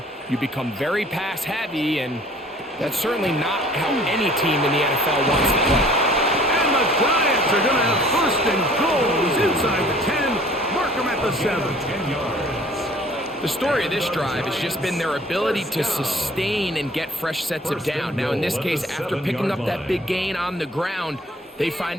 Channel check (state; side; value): normal; both; correlation 0.52